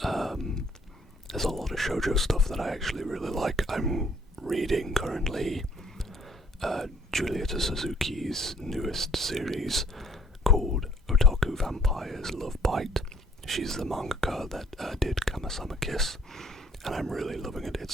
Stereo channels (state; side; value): normal; both; correlation 0.62